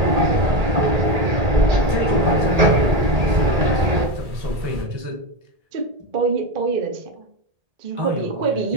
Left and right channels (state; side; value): late; left; 1.8 ms